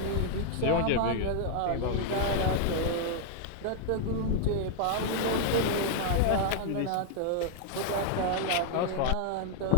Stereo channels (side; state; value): both; different; correlation 0.00